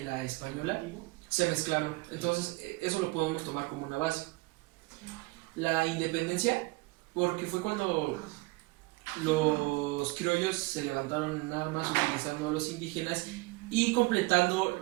la española, se mezclaron. Entonces eso lo podemos tomar como una base. La independencia porque fue cuando los criollos se levantaron en armas utilizando a los indígenas y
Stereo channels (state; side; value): quieter; left; 23.4 dB